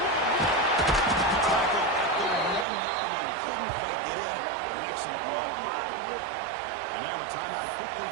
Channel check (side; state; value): left; drops out; at 2.7 s